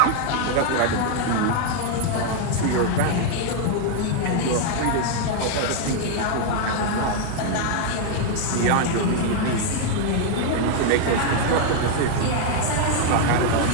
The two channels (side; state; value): both; different; correlation 0.00